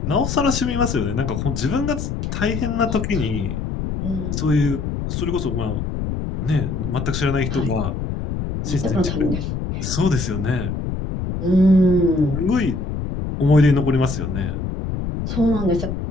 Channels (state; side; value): noise; left; rumble, 4 dB below the sound